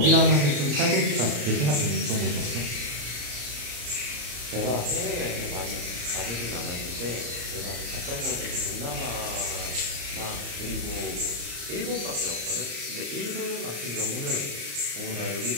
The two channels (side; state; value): left; late; 34 ms